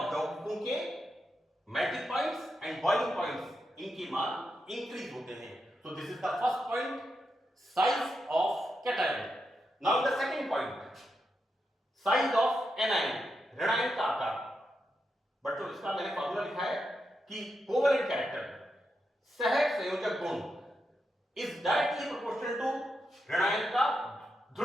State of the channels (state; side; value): normal; both; correlation 0.85